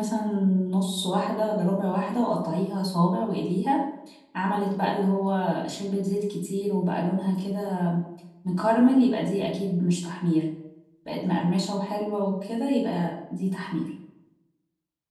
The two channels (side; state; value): both; identical; correlation 1.00